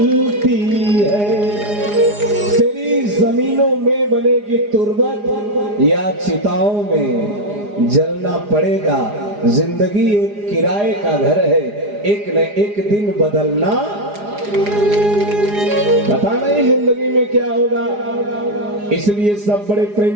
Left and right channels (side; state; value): left; late; 4.9 ms